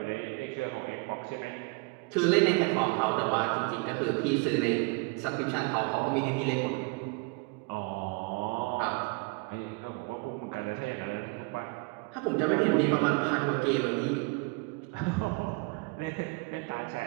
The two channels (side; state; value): left; quieter; 29.8 dB